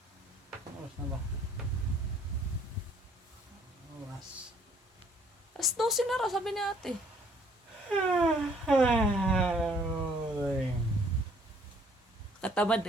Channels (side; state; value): both; normal; correlation 0.61